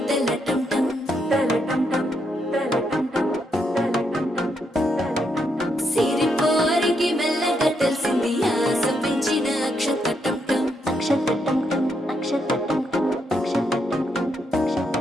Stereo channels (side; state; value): both; normal; correlation 0.79